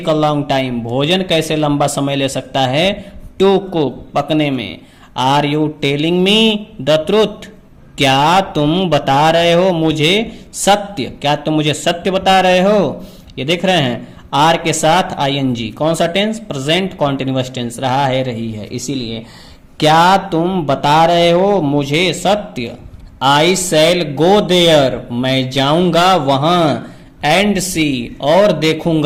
a long time भोजन कैसे लंबा समय ले सकता है, टू कुक पकने में, are you telling me the truth क्या तुम बता रहे हो मुझे सत्य, क्या तुम मुझे सत्य बता रहे हो। ये देख रहे हैं आर के साथ आईएनजी, कौन सा टेंस, प्रेजेंट कॉन्टिन्यूअस टेंस, रहा है रही है, इसीलिए क्या तुम बता रहे हो मुझे सत्य, आई शैल गो देयर मैं जाऊंगा वहां, एंड सी और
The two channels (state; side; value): identical; both; correlation 1.00